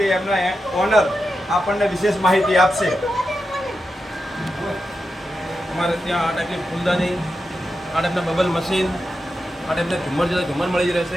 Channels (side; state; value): both; normal; correlation 0.89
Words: એમના ઓનર આપણને વિશેષ માહિતી આપશે। અમારે ત્યાં આ ટાઈપની ફૂલદાની, આ ટાઈપના બબલ મશીન, આ ટાઈપના ઝુમ્મર જોતા ઝુમ્મર મળી